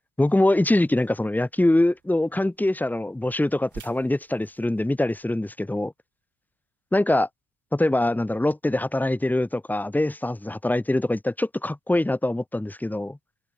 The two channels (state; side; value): normal; both; correlation 0.96